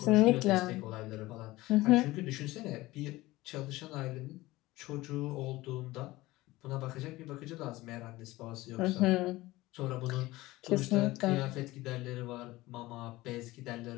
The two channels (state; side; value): quieter; right; 18.9 dB